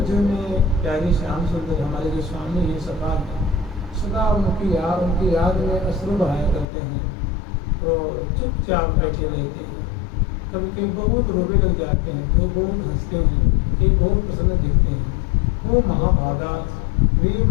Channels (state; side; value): drops out; right; at 6.7 s